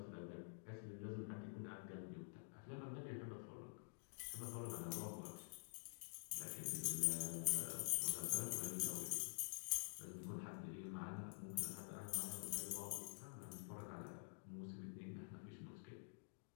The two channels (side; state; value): right; silent; digital silence